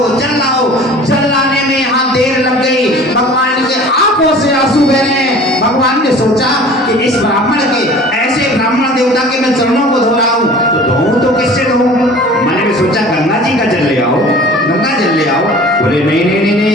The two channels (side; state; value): both; normal; correlation 0.44